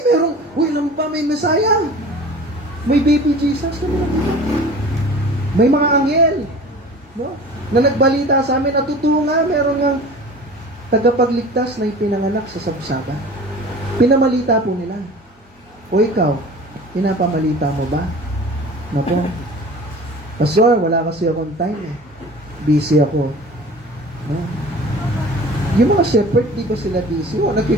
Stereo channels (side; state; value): both; normal; correlation 0.41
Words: pa, may Messiah. May baby Jesus. May mga anghel. No? Na nagbalita sa amin, natutuwa nga, meron nga tagapagligtas na ipinanganak sa sabsaban. Pinamalita po nila. O ikaw, pinapamalita mo ba? Napo. Pastor, wala kasi akong time eh. Busy ako. No? Yung mga shepherd, di ba sila busy?